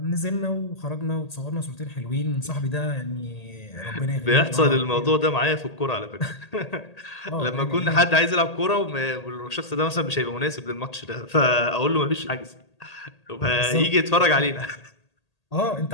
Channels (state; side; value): late; right; 1.8 ms